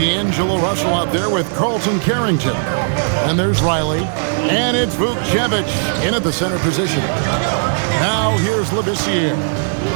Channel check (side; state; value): left; silent; digital silence